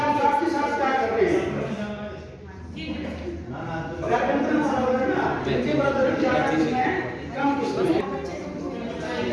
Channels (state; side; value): identical; both; correlation 1.00